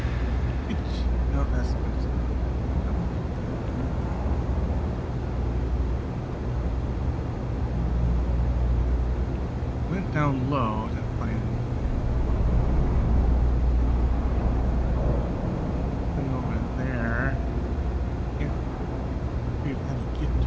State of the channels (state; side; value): identical; both; correlation 1.00